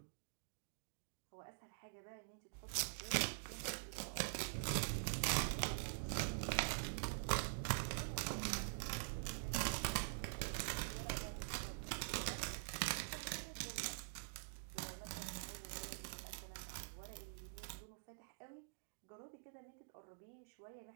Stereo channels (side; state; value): left; silent; digital silence